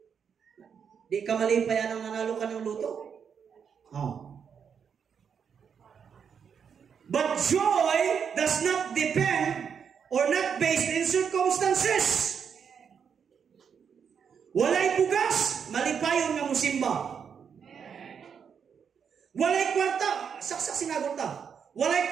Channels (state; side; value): quieter; left; 7.1 dB